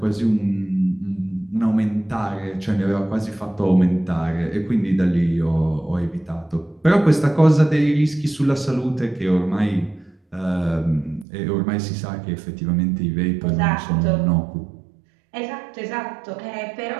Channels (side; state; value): left; drops out; at 11.2 s